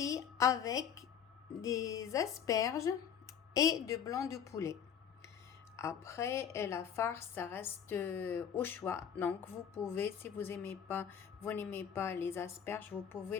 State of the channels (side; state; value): right; quieter; 8.2 dB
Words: avec des asperges et du blanc de poulet. Après, la farce, ça reste au choix. Donc, vous pouvez, si vous n'aimez pas les asperges, vous